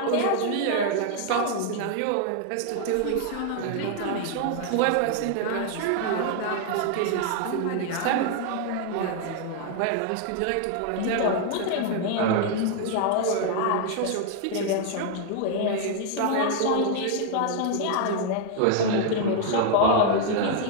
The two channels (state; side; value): different; both; correlation 0.00